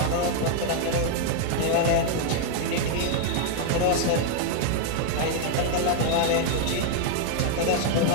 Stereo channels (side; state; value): both; different; correlation 0.00